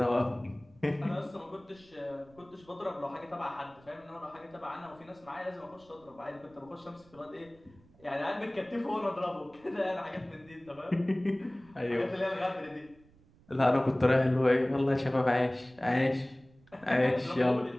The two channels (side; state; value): right; noise; rumble, 27 dB below the sound